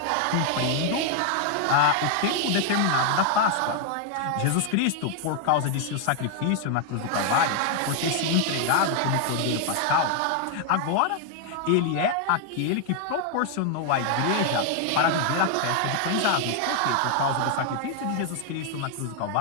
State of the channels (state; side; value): different; both; correlation 0.00